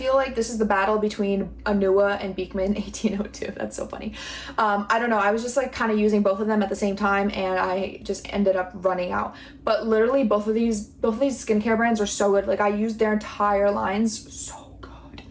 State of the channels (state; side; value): identical; both; correlation 1.00